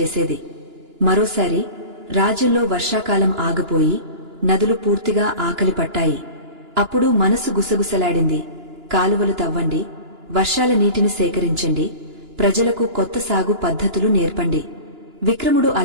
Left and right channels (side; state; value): left; late; 2.9 ms